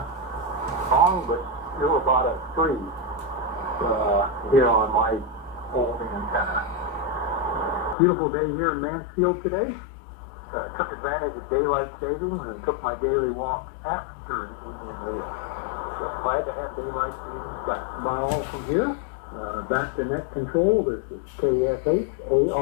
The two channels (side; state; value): right; drops out; at 8.0 s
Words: but still about a 3 here on my old antenna. Beautiful day here in Mansfield today. Took advantage of daylight savings and took my daily walk after the evening meal. So glad to have daylight savings back. Now from here, back to net control. This is